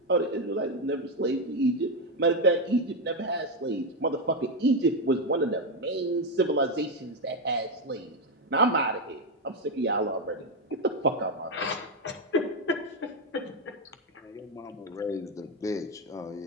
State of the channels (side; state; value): both; normal; correlation 0.07